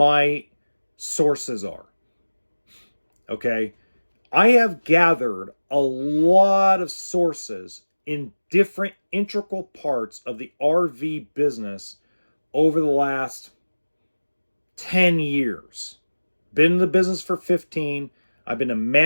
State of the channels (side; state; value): both; inverted; correlation -1.00